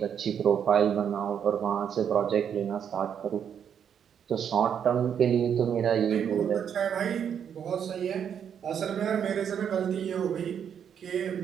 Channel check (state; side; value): quieter; left; 8.2 dB